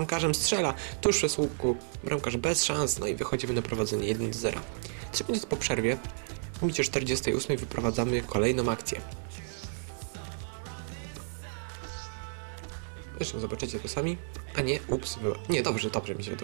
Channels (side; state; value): left; silent; digital silence